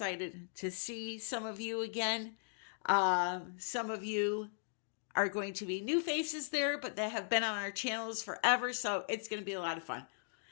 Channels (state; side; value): silent; right; digital silence